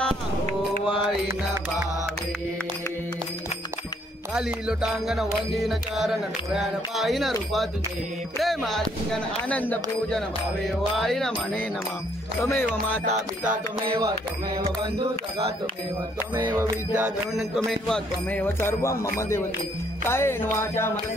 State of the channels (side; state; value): both; normal; correlation 0.67